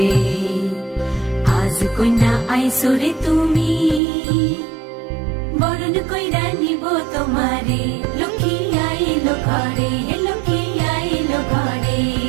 আজ কন্যা আইসরে তুমি, বরণ কইরা নিব তোমার লক্ষ্মী আইলো ঘরে, লক্ষ্মী আইলো ঘরে।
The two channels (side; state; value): left; drops out; at 4.0 s